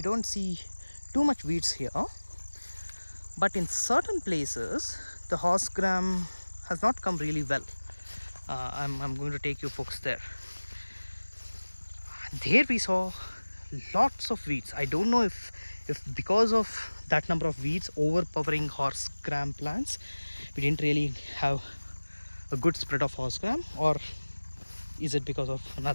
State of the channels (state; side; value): inverted; both; correlation -1.00